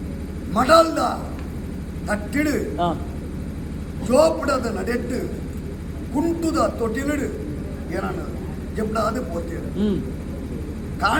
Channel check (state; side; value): identical; both; correlation 1.00